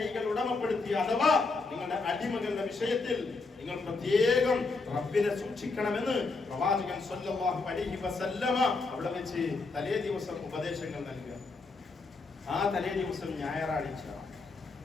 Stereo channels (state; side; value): quieter; right; 3.9 dB